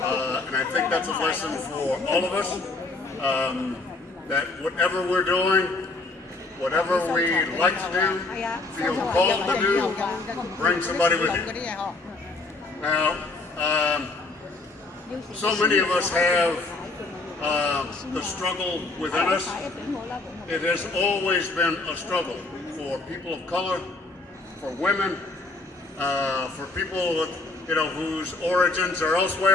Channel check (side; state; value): right; quieter; 3.3 dB